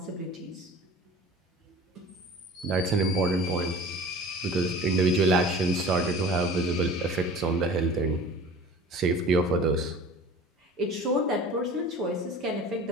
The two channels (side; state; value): both; normal; correlation 0.41